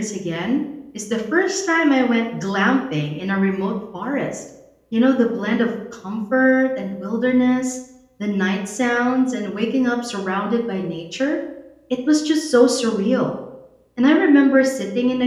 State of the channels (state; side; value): identical; both; correlation 1.00